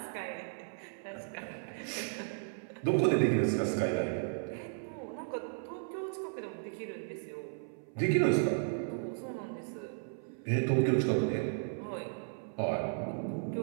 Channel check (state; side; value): silent; left; 55 dB below the other